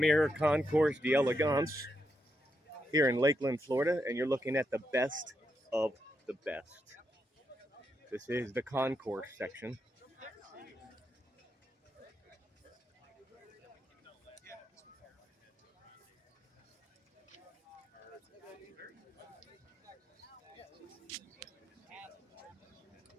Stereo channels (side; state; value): both; normal; correlation 0.83